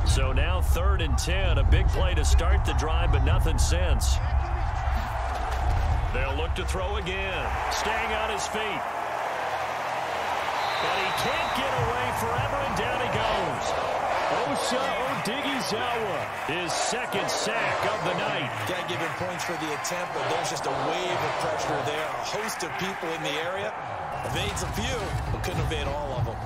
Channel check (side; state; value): both; identical; correlation 1.00